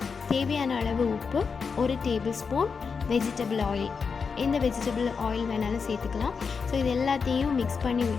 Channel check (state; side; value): quieter; right; 5.5 dB